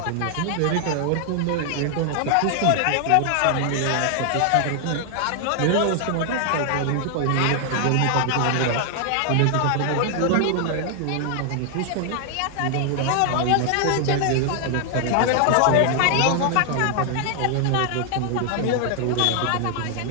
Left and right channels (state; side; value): different; both; correlation 0.00